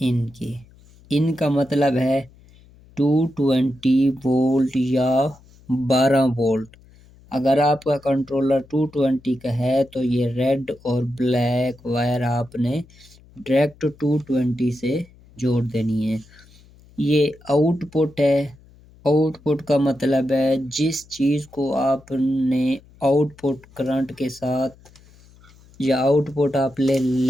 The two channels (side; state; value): left; noise; hum, 26 dB below the sound